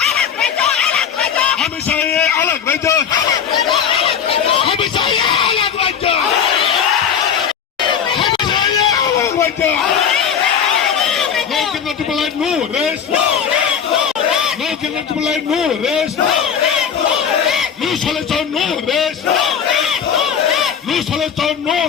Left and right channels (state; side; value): quieter; right; 7.7 dB